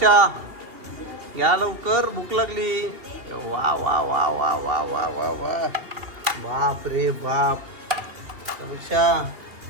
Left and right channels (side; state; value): left; late; 3.1 ms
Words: या लवकर, भूक लागली. वा वा वा वा वा वा वा वा. बाप रे बाप. समीक्षा